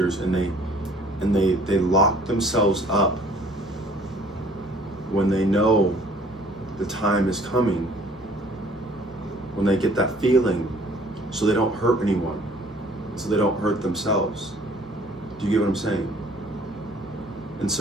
and they lock themselves up when they know the time is coming, when they get that feeling, so they don't hurt anyone, so they don't hurt themselves. Do you get what I'm saying? And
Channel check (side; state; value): both; normal; correlation 0.55